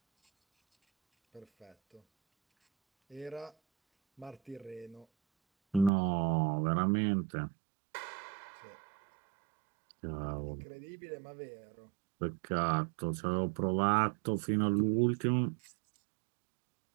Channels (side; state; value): left; drops out; at 5.9 s